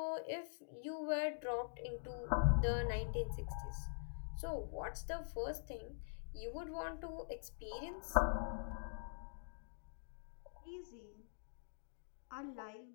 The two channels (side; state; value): right; silent; digital silence